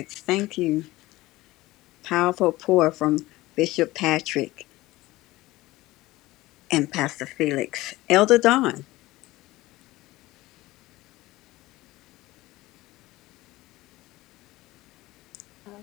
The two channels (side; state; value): right; quieter; 18.5 dB